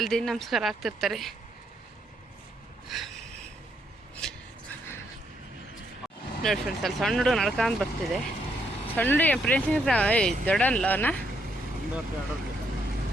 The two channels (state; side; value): normal; both; correlation 0.75